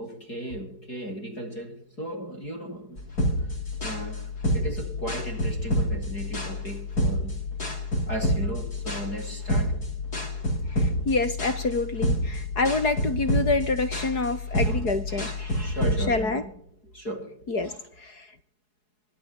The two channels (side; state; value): right; late; 4.7 ms